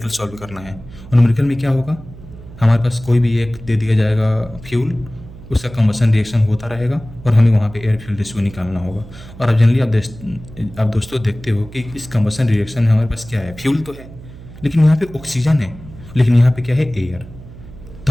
सॉल्व करना है। और न्यूमेरिकल में क्या होगा? हमारे पास कोई भी एक दे दिया जाएगा फ्यूल, उसका कंबशन रिएक्शन होता रहेगा और हमें वहाँ पे एयर फ्यूल रेशियो निकालना होगा। और अब जनरली आप दोस्तों देखते हो कि इस कंबशन रिएक्शन में हमारे पास क्या है? फ्यूल तो है, लेकिन यहाँ पे ऑक्सीजन है, लेकिन यहाँ पे क्या है? एयर। तो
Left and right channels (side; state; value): right; noise; hum, 17 dB below the sound